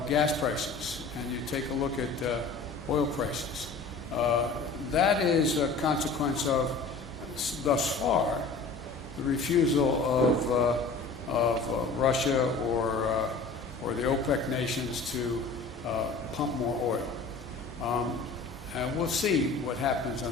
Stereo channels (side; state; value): right; quieter; 4.1 dB